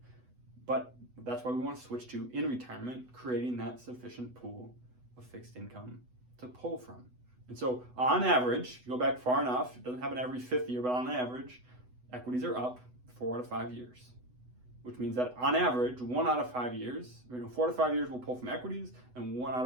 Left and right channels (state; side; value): late; left; 8.0 ms